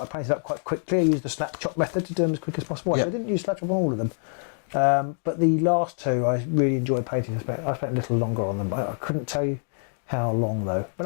I painted up quite quickly. I used the snap chop method to do them as quick as possible. Yep. I didn't use snap chop on all of them, but the last 2 I really enjoyed painting. I spent a little longer on them. I couldn't tell you how long though. But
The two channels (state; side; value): silent; right; digital silence